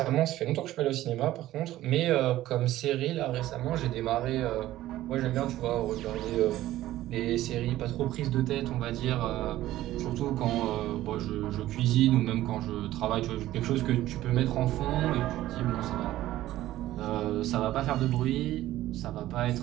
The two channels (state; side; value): quieter; left; 14.8 dB